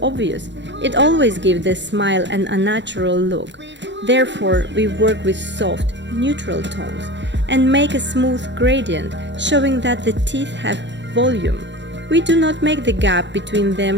obvious. It always gives the smile an unnatural look. Therefore, we work with soft, neutral tones and make a smooth gradient, showing that the teeth have volume. We do not make the gap between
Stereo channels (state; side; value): late; left; 0.52 ms